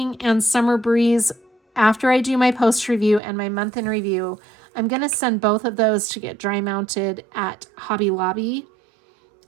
and Summer Breeze, after I do my post review and my month in review, I'm going to send both of those to get dry mounted at Hobby Lobby.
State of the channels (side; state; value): left; drops out; at 3.2 s